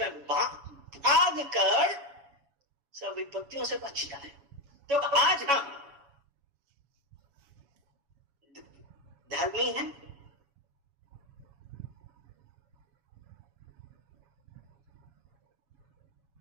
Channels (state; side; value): late; left; 7.1 ms